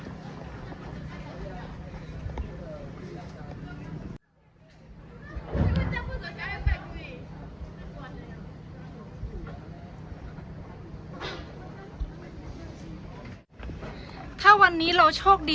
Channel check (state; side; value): identical; both; correlation 1.00